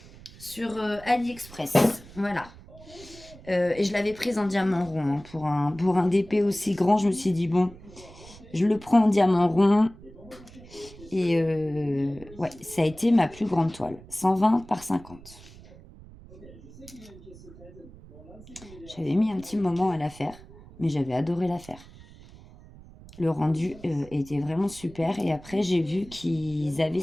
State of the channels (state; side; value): noise; right; rumble, 20 dB below the sound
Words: sur AliExpress. Voilà. Et je l'avais prise en diamant rond, hein, pour un DP aussi grand. Je me suis dit, bon, je le prends en diamant rond. Et ouais, ça a été ma plus grande toile. 120 par 50. J'avais mis un petit moment à la faire, mais j'avais adoré la faire. Le rendu était vraiment super. Et après, j'ai vu qu'ils avaient